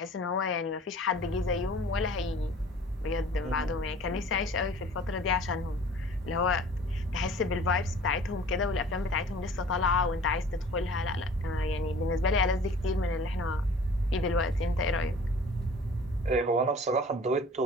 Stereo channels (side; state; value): both; normal; correlation 0.47